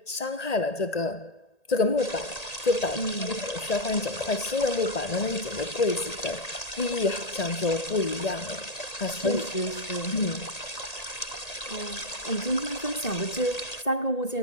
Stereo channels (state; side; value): late; right; 1.8 ms